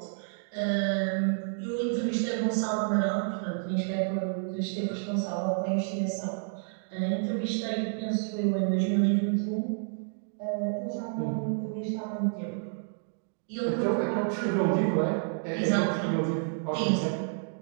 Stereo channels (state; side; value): silent; left; digital silence